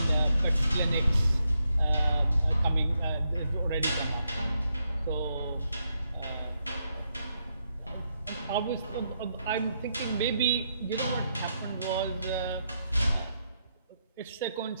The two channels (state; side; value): inverted; both; correlation -0.81